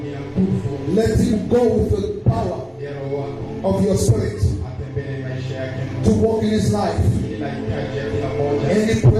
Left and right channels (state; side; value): identical; both; correlation 1.00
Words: Let him go with the power of your spirit to walk in his life. Any